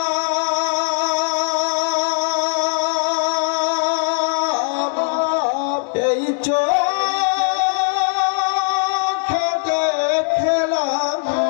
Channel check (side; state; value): right; silent; digital silence